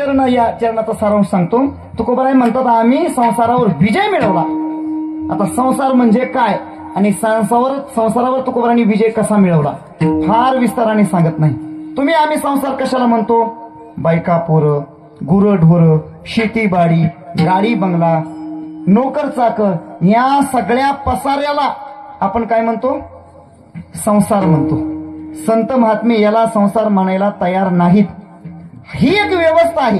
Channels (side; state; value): both; identical; correlation 1.00